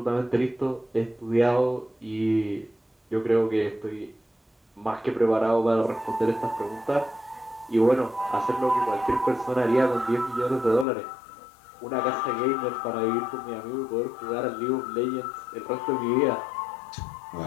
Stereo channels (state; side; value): drops out; right; at 10.9 s